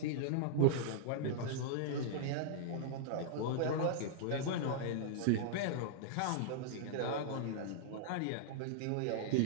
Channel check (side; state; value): both; different; correlation -0.02